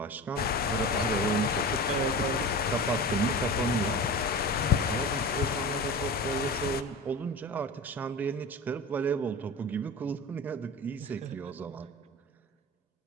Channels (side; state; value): both; normal; correlation 0.32